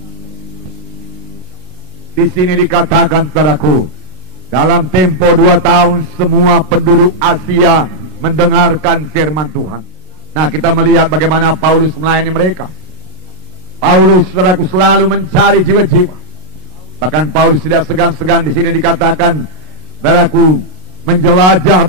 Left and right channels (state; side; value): late; left; 33 ms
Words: Di sini dikatakan, saudaraku, dalam tempo 2 tahun semua penduduk Asia mendengarkan firman Tuhan. Nah, kita melihat bagaimana Paulus melayani mereka. Paulus, saudaraku, selalu mencari jiwa-jiwa. Bahkan Paulus tidak segan-segan, di sini dikatakan, saudaraku, menjelajah